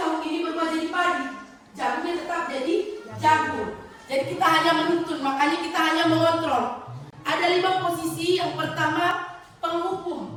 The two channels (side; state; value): both; identical; correlation 1.00